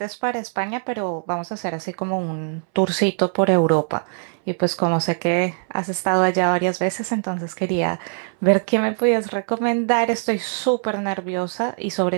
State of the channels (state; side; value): silent; left; 64 dB below the other